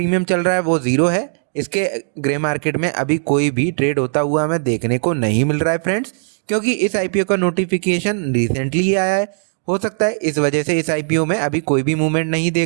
चल रहा है वो 0 है। इसके ग्रे मार्केट में अभी कोई भी ट्रेड होता हुआ हमें देखने को नहीं मिल रहा है फ्रेंड्स, क्योंकि इस आईपीओ का नोटिफिकेशन रिसेंटली ही आया है। हो सकता है इस वजह से इस आईपीओ में अभी कोई भी मूवमेंट नहीं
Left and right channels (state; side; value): silent; left; digital silence